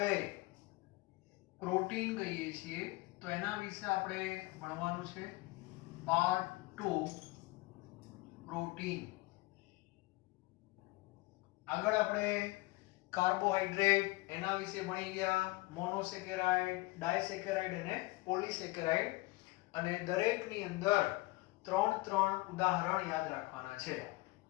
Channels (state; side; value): quieter; right; 21.8 dB